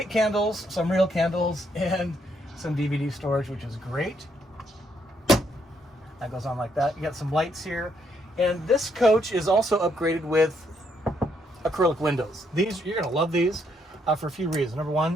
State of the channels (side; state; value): both; normal; correlation 0.74